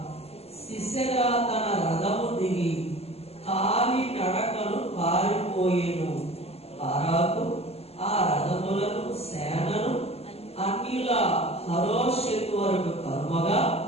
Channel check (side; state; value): right; late; 0.29 ms